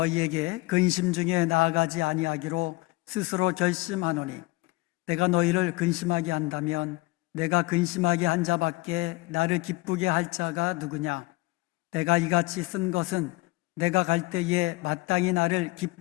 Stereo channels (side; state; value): right; quieter; 22.3 dB